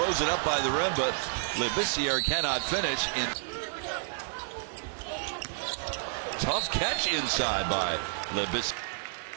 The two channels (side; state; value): left; silent; 58 dB below the other